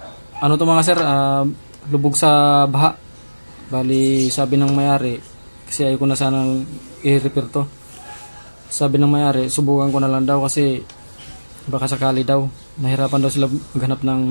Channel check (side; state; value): both; inverted; correlation -1.00